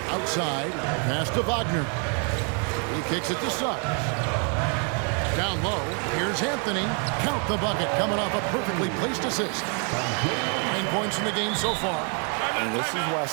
outside, pass to Wagner. He kicks it to Suggs. Down low, here's Anthony. Count the bucket, coming off a perfectly placed assist. 9 points in the game so far. And this is why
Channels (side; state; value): left; quieter; 39.3 dB